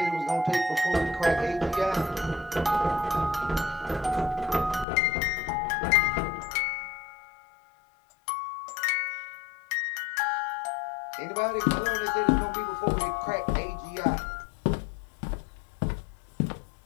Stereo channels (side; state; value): right; drops out; at 4.9 s